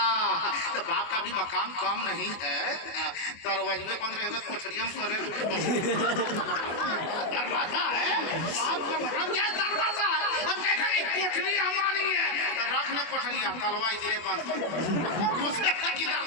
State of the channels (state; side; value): late; right; 24 ms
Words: तो बाप का भी मकाम कम नहीं है। दरवाजे में बंद रहेगा तो कोठरिया में करे। दरवाजा है, बाप का मतलब क्या है? दरवाजा है। अब कहेगा नहीं कोठरी हमारी है, तो रखना कोठरिया, तलवा इधरे बंद किधर